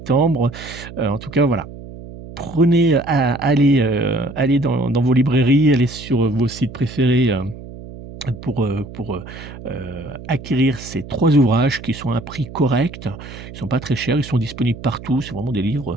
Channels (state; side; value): noise; right; hum, 14 dB below the sound